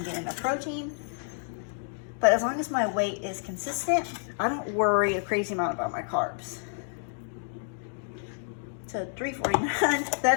getting enough protein. But as long as my weight is consistent, I don't worry a crazy amount about my carbs. So 349,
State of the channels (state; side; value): silent; right; digital silence